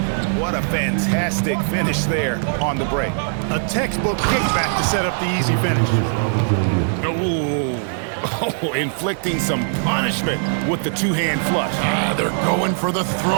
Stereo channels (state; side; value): silent; left; digital silence